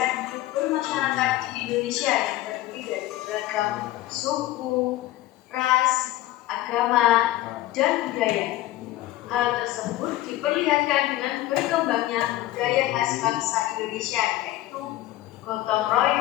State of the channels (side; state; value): right; quieter; 15.8 dB